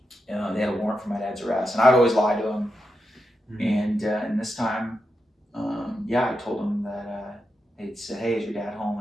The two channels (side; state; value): both; normal; correlation 0.87